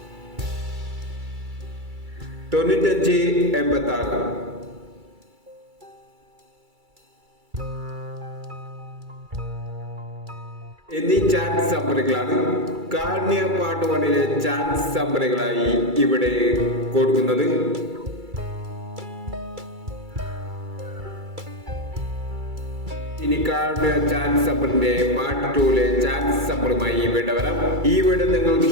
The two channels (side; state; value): left; late; 2.3 ms